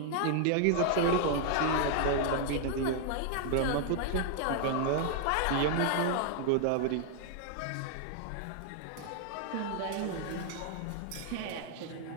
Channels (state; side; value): different; both; correlation 0.00